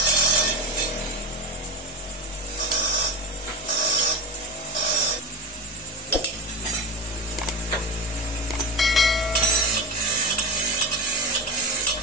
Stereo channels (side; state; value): both; normal; correlation 0.24